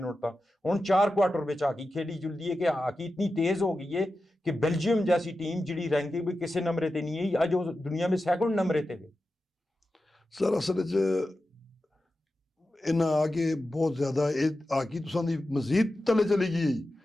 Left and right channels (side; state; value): both; normal; correlation 0.92